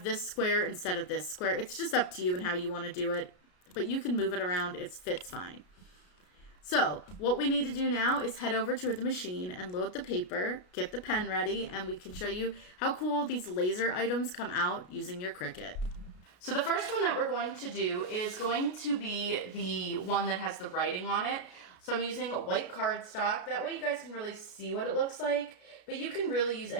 this square instead of this square. It's just up to you and how you want to do it. But you can move it around, it fits fine. So what we need to do now is head over to the machine and load the paper, get the pen ready, and we can show you how cool these laser items come out using your Cricut. So the first one that we're going to do is going to be the one that has the writing on it. So I'm using white cardstock. That way you guys can really see what it looks like. But you can really use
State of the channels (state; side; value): late; right; 33 ms